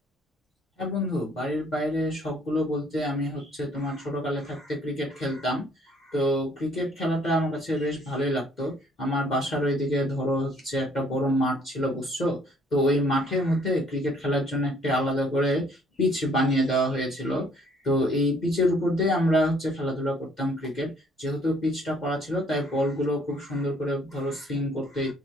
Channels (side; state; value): both; normal; correlation 0.62